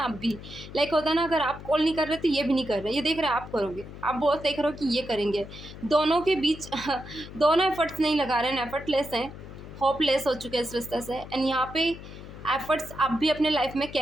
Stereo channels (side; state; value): left; noise; hum, 14 dB below the sound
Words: आप भी लाइक होता है ना, अगर आप कॉल नहीं कर रहे तो ये भी नहीं कर रहे, ये देख रहे हैं आप करोगे, आप बहुत देख रहे हो कि ये करेंगे। दोनों के बीच दोनों एफर्ट्स नहीं लगा रहे हैं, एफर्टलेस हैं, होपलेस हो चुके हैं इस रिश्ते से। एंड यहाँ पे एफर्ट्स आप भी अपने लाइफ में